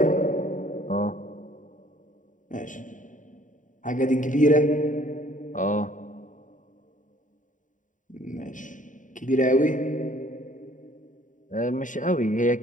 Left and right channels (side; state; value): right; late; 0.37 ms